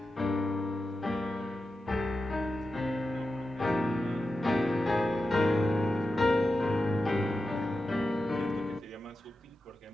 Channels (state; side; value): normal; both; correlation 0.91